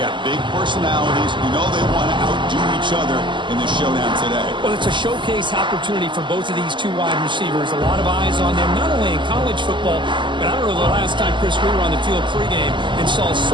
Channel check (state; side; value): late; left; 0.23 ms